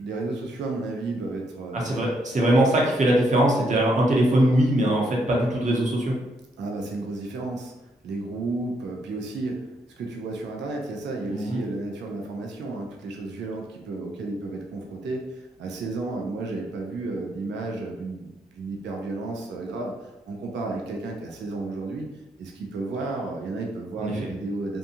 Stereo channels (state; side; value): normal; both; correlation 0.75